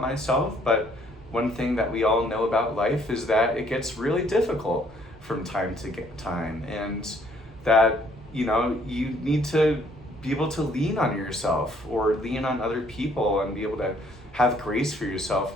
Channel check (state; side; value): normal; both; correlation 0.63